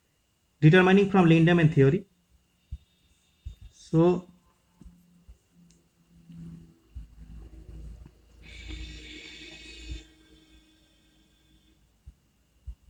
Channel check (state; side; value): identical; both; correlation 1.00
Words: determining from Lindemann theory. So